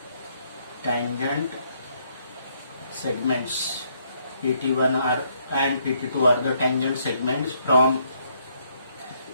tangent segments. PT1 and PT2 are the tangent segments from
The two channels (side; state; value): both; inverted; correlation -0.71